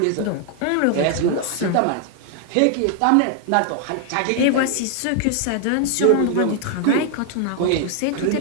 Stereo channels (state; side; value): different; both; correlation 0.00